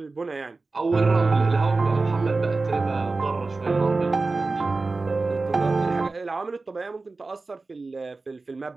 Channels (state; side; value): quieter; left; 3.7 dB